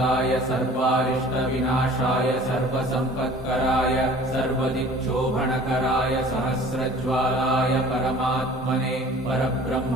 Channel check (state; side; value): normal; both; correlation 0.47